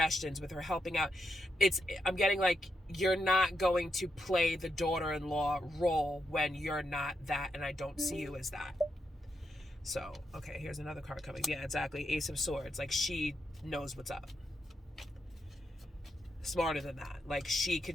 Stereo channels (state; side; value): normal; both; correlation 0.83